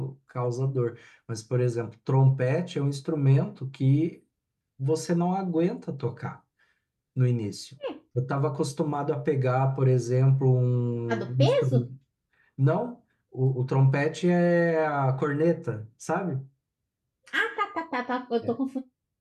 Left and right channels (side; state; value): both; identical; correlation 1.00